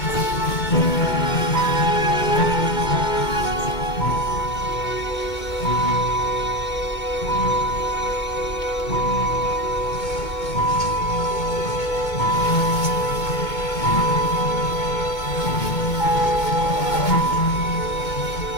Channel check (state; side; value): late; right; 2.2 ms